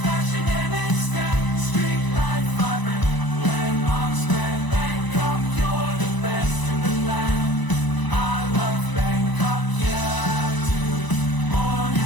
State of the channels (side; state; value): right; late; 1.0 ms